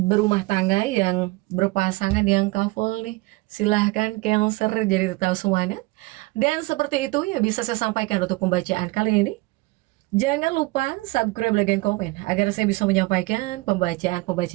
tangga, yang berpasangan, yang couple nih, silahkan Cancer jadi tahu semuanya. Dan seperti itu ya bisa saya sampaikan untuk pembacaan kali ini. Jangan lupa subscribe, like, dan komen agar saya bisa menyampaikan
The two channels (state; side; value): quieter; left; 22.5 dB